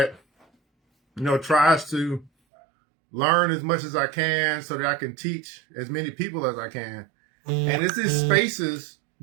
tries to learn as much as I can so that I can teach as many people as I can. And it's these spaces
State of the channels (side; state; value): left; drops out; at 2.3 s